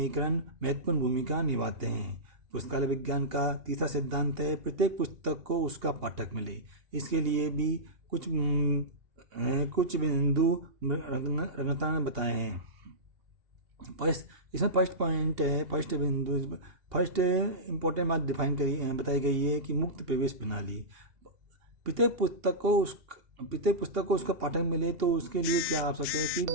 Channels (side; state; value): left; late; 2.8 ms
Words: महत्वपूर्ण भूमिका निभाते हैं। पुस्तकालय विज्ञान का तीसरा सिद्धांत है प्रत्येक पुस्तक को उसका पाठक मिले। इसके लिए भी कुछ बिंदु रंगता ने बताए हैं। इसमें फर्स्ट इम्पोर्टेंट बात बताई गई है कि मुक्त प्रवेश प्रणाली। प्रत्येक पुस्तक को उसका पाठक मिले तो उसके लिए क्या आवश्यक